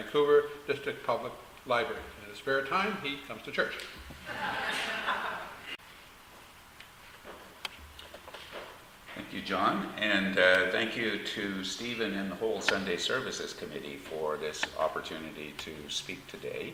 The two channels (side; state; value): both; identical; correlation 1.00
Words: District Public Library. In his spare time, he comes to church. Thank you, John, and thank you to Stephen and the whole Sunday Services Committee for this opportunity to speak today.